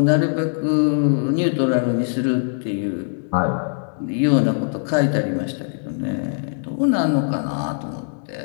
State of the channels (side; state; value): right; silent; digital silence